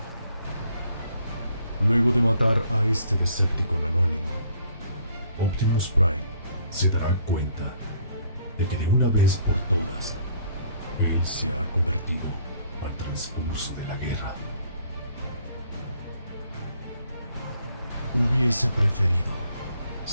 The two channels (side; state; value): both; inverted; correlation -0.62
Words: Luego de matar a este Decepticon anónimo, Optimus Prime se dará cuenta de que de una vez por todas, él se ha convertido al transcurso de la guerra. Hubiese preferido,